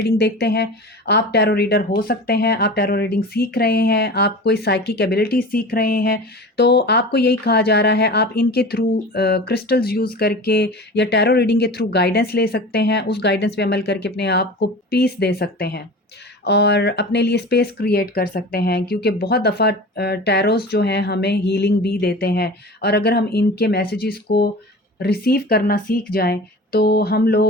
देखते हैं, आप टैरो रीडर हो सकते हैं, आप टैरो रीडिंग सीख रहे हैं, आप कोई साइकिक एबिलिटी सीख रहे हैं, तो आपको यही कहा जा रहा है आप इनके थ्रू क्रिस्टल्स यूज़ करके या टैरो रीडिंग के थ्रू गाइडेंस ले सकते हैं। उस गाइडेंस पे अमल करके अपने आप को पीस दे सकते हैं और अपने लिए स्पेस क्रिएट कर सकते हैं, क्योंकि बहुत दफ़ा टैरोस जो हैं हमें हीलिंग भी देते हैं, और अगर हम इनके मैसेजेस को रिसीव करना सीख जाएं तो हम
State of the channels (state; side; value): normal; both; correlation 0.35